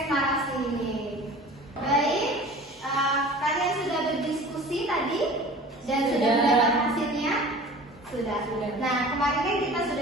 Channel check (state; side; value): normal; both; correlation 0.41